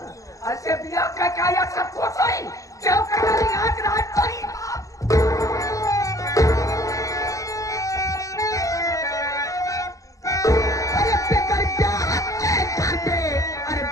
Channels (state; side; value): late; right; 0.16 ms